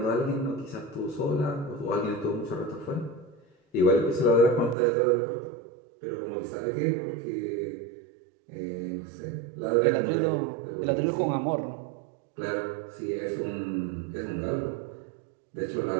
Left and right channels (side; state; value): left; drops out; at 4.8 s